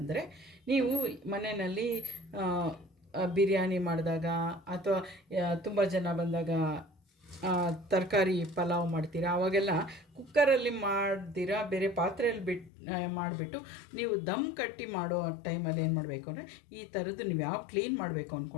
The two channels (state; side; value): drops out; right; at 12.7 s